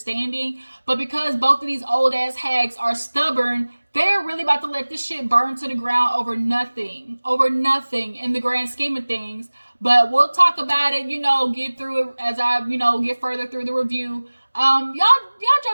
But because both of these old-ass hags are stubborn, they're really about to let this shit burn to the ground over nothing in the grand scheme of things. But we'll talk about it, get through it as I, get further through the review. Y'all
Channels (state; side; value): inverted; both; correlation -1.00